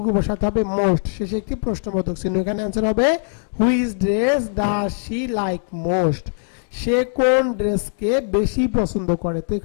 বসাতে হবে মোস্ট, শেষে একটি প্রশ্নবোধক চিহ্ন। এখানে অ্যান্সার হবে which dress does she like most, সে কোন ড্রেসকে বেশি পছন্দ করে। তো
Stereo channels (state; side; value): silent; right; digital silence